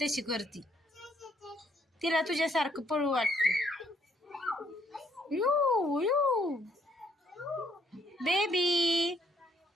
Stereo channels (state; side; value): normal; both; correlation 0.67